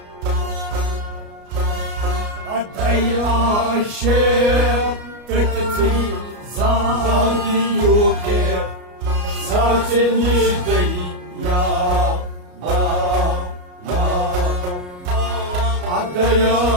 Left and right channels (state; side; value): late; left; 33 ms